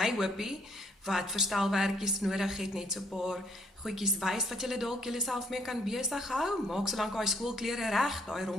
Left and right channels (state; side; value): normal; both; correlation 0.67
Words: hoopie wat verstelwerkies nodig het, net so 'n paar goedjies wys wat julle dalk julleself mee kan besig hou. Maak solank daai skoolklere reg, daai